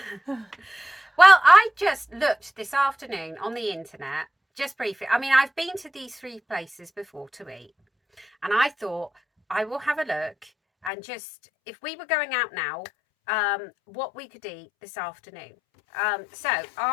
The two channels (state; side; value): drops out; right; at 10.9 s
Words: Well, I just looked this afternoon on the internet, just briefly. I mean, I've been to these 3 places before to eat, and I thought I will have a look and just, if we were going out now, what we could eat this afternoon. So